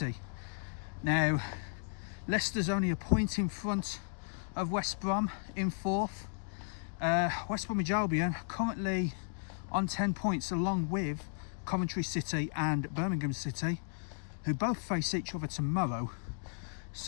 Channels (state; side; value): silent; right; digital silence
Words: Now, Leicester's only a point in front of West Brom in fourth. West Bromwich Albion currently on 10 points, along with Coventry City and Birmingham City, who both face each other tomorrow.